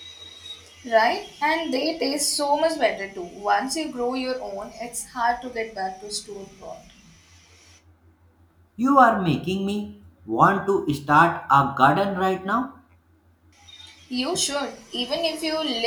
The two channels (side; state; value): both; identical; correlation 1.00